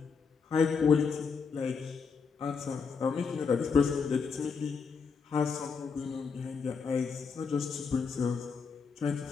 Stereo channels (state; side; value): quieter; right; 5.5 dB